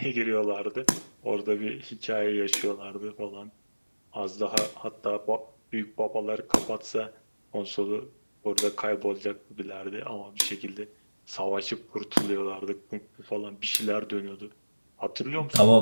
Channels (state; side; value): inverted; both; correlation -1.00